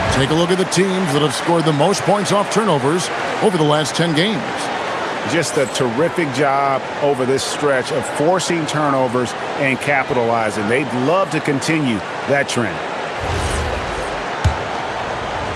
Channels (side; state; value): both; identical; correlation 1.00